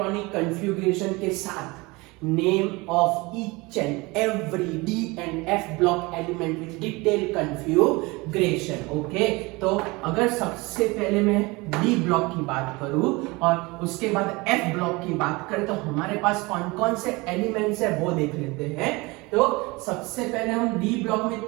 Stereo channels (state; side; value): quieter; left; 24.1 dB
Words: कन्फ्यूग्रेशन के साथ name of each and every D and F block element with detailed configuration। Okay, तो अगर सबसे पहले मैं D ब्लॉक की बात करूं और उसके बाद F ब्लॉक की बात करें तो हमारे पास कौन कौन से एलिमेंट्स है वो देख लेते हैं। तो सबसे पहले हम D ब्लॉक में